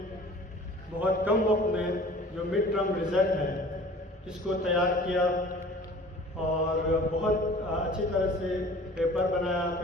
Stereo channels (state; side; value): normal; both; correlation 0.46